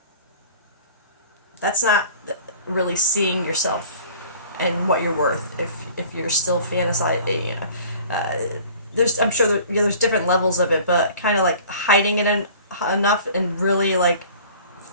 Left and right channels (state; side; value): inverted; both; correlation -0.47